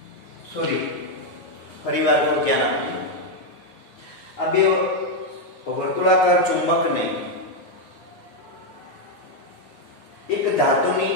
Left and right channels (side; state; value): right; late; 9.6 ms